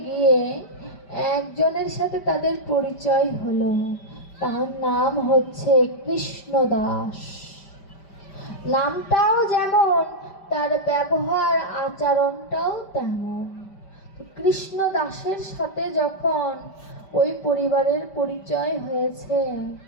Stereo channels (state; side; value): late; right; 5.1 ms